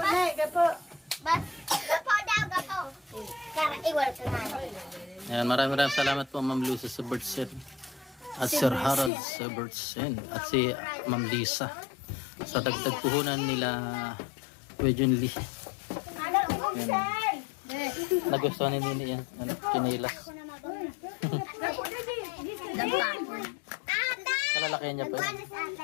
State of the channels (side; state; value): right; drops out; at 9.1 s